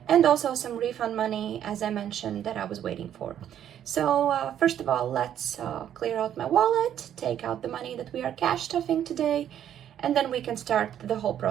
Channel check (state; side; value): quieter; left; 10.2 dB